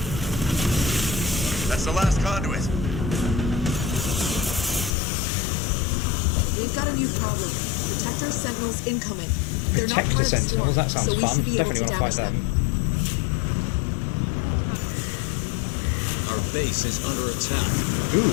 That's the last conduit. We've got a new problem. Protector Sentinels incoming. They're not Protector part of the Sentinels, swarm, that sounds so we fun. should be able Definitely to want to fight damage them. Our base is under attack. Ooh.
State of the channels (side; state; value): right; drops out; at 4.9 s